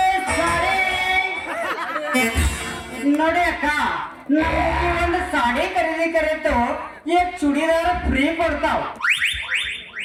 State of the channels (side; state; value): both; identical; correlation 1.00